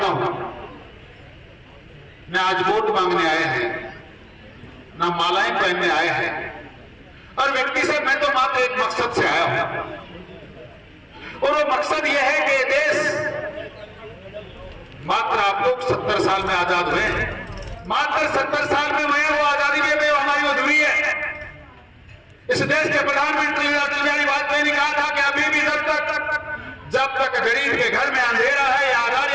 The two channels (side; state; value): both; identical; correlation 1.00